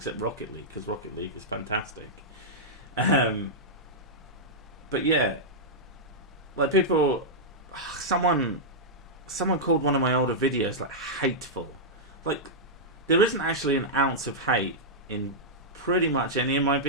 Rocket League, because Rocket League is fantastic. But yeah, like people, someone called one of my older videos like hateful. Like, there isn't actually an ounce of hate in pretty much any of my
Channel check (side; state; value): both; normal; correlation -0.08